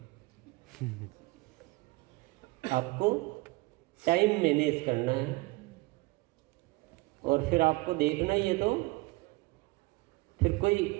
आपको टाइम मैनेज करना है और फिर आपको देखना ही है, तो फिर कोई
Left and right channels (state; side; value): quieter; left; 23.3 dB